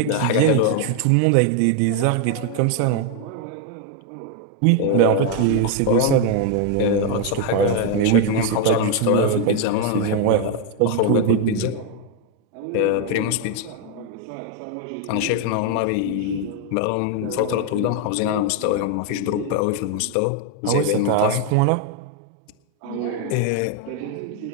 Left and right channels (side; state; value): both; different; correlation 0.01